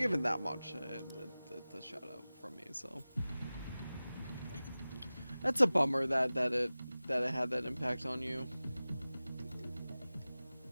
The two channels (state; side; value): inverted; both; correlation -0.97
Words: that much, it's a shout out from me, so that's a bummer that it had that impact on you.